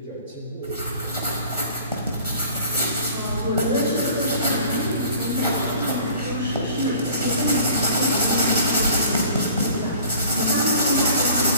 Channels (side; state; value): both; inverted; correlation -0.48